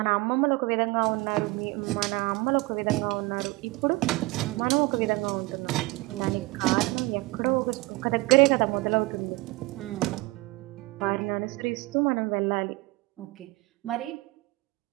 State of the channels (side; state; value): left; quieter; 23.2 dB